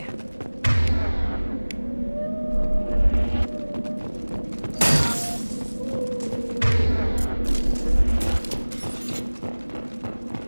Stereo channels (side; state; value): both; inverted; correlation -1.00